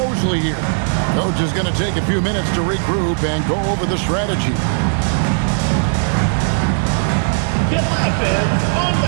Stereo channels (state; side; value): silent; left; digital silence